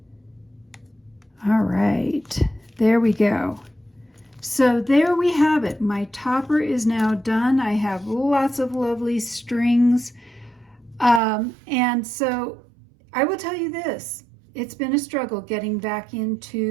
All right, there we go. So there we have it. My topper is now done. I have lots of lovely strings. And so I will tell you this, it's been a struggle getting back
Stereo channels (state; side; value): drops out; left; at 11.2 s